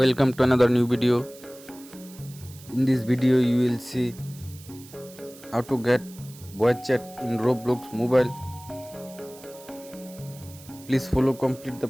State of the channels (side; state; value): right; noise; hiss, 20 dB below the sound